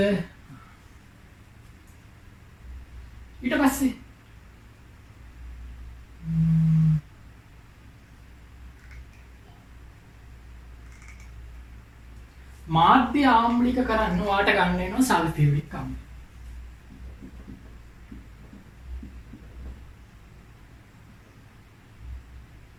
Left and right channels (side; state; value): both; identical; correlation 1.00